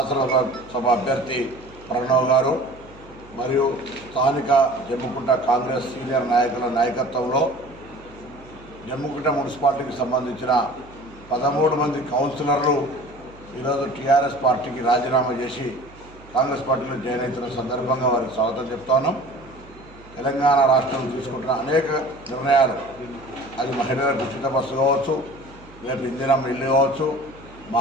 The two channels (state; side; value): noise; right; hum, 22 dB below the sound